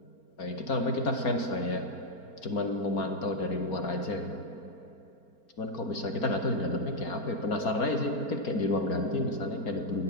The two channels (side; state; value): right; late; 4.4 ms